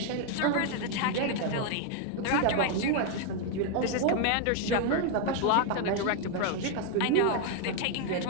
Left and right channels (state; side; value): different; both; correlation 0.01